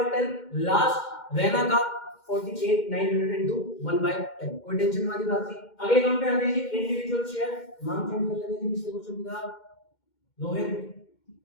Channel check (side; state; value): right; late; 2.1 ms